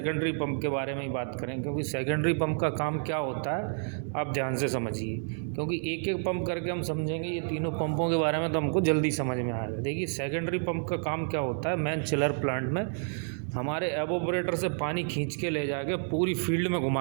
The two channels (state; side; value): silent; left; 58 dB below the other